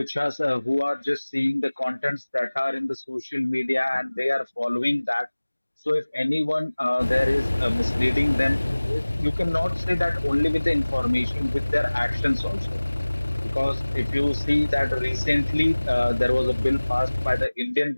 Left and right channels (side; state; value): both; inverted; correlation -1.00